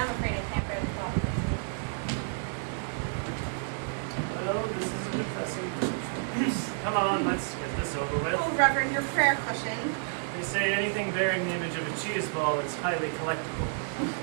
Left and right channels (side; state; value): left; silent; digital silence